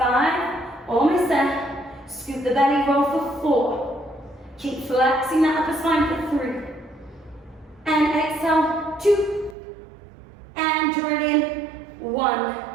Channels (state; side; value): drops out; left; at 9.6 s